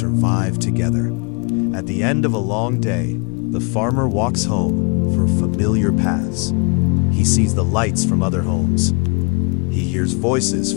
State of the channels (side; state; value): right; quieter; 32.4 dB